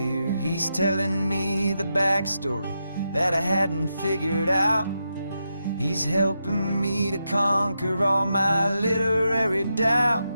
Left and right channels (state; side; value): inverted; both; correlation -0.86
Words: He's telling me the backstory that I hadn't figured out. He's helping me to conquer all my literary doubt.